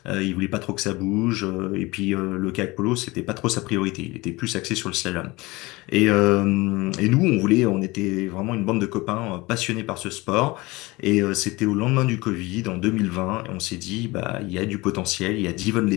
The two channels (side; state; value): right; quieter; 22.3 dB